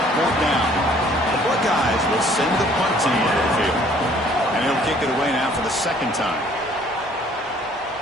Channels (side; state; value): both; normal; correlation 0.58